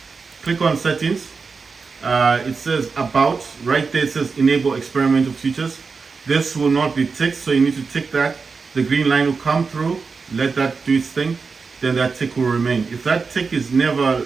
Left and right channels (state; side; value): quieter; left; 4.8 dB